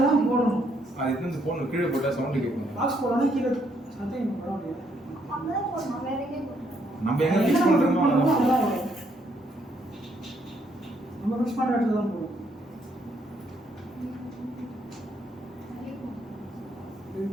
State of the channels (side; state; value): both; normal; correlation 0.72